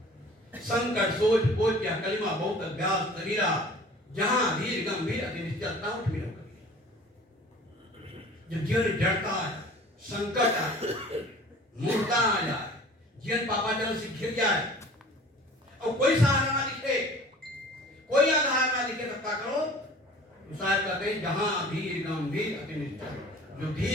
संकट सोच बोझ क्या कलिमा बहुत अभ्यास तरीरा, जहां धीर गंभीर अति निश्चलता उठ मिलो कबीरा। जब जीवन जड़ता आ जाए, संकट आ जाए, मूर्खता आ जाए, जीवन पापाचरण से घिर जाए और कोई सहारा ना दिखे, कोई आधार ना दिखे, तब क्या करो? शायद कहते हैं जहां धीर गंभीर अति निश्चल। जो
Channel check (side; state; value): both; normal; correlation 0.46